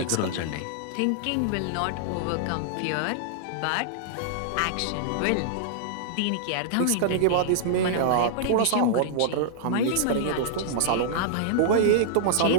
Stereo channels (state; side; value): different; both; correlation -0.01